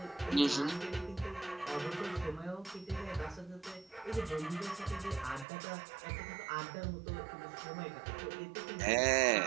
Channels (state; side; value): drops out; left; at 5.5 s